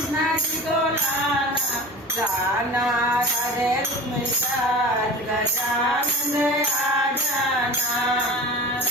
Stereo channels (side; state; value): both; normal; correlation 0.34